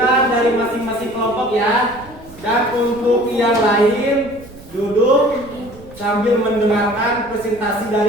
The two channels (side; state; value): right; noise; rumble, 20 dB below the sound